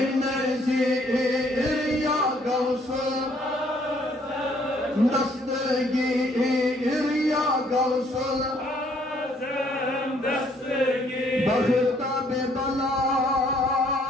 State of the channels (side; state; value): both; normal; correlation 0.65